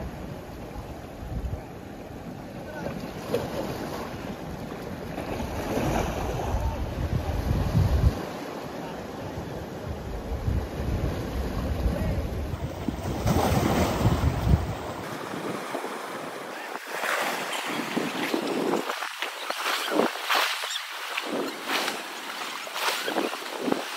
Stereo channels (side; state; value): both; identical; correlation 1.00